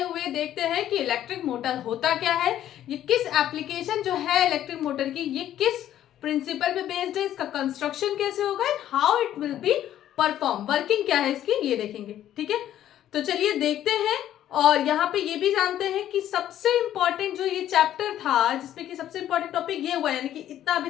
हुए देखते हैं कि इलेक्ट्रिक मोटर होता क्या है, ये किस एप्लीकेशन जो है इलेक्ट्रिक मोटर की, ये किस प्रिंसिपल पे बेस्ड है, इसका कंस्ट्रक्शन कैसे होगा and how it will be perform, working क्या है इसकी, ये देखेंगे। ठीक है, तो चलिए देखते हैं। और यहाँ पे ये भी जानते हैं कि सबसे इंपॉर्टेंट जो ये चैप्टर था जिसमें कि सबसे इंपॉर्टेंट टॉपिक ये हुआ, यानी कि इतना अभी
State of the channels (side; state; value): right; quieter; 11.8 dB